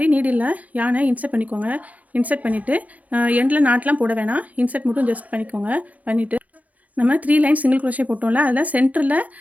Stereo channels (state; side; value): late; left; 0.074 ms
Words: நீடில் யானை இன்சர்ட் பண்ணிக்கோங்க. இன்சர்ட் பண்ணிவிட்டு எண்டில் நாட்லாம் போட வேணாம், இன்சர்ட் மட்டும் ஜஸ்ட் பண்ணிக்கோங்க. பண்ணிவிட்டு நம்ம 3 லைன் சிங்கிள் க்ரோஷே போட்டோம்ல, அதில் சென்டரில்